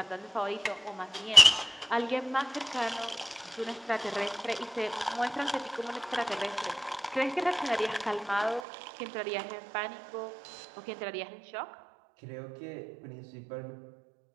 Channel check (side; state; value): left; drops out; at 8.6 s